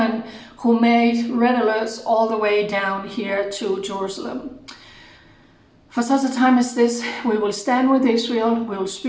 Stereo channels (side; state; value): both; identical; correlation 1.00